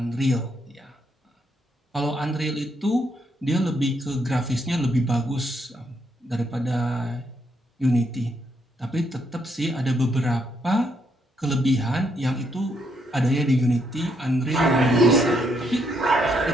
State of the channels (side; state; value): both; normal; correlation 0.75